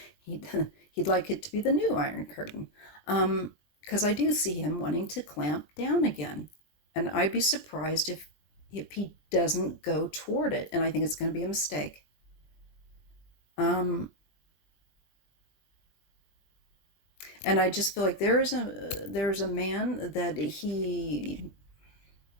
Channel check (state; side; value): late; right; 20 ms